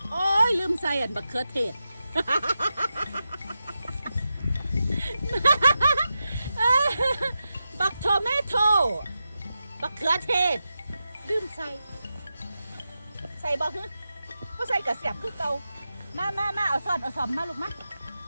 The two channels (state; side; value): inverted; both; correlation -0.90